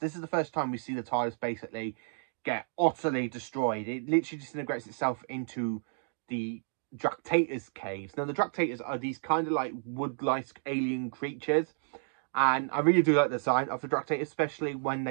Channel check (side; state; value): left; silent; digital silence